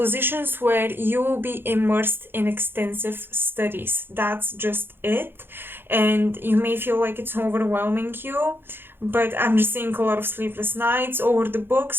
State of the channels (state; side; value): late; left; 0.10 ms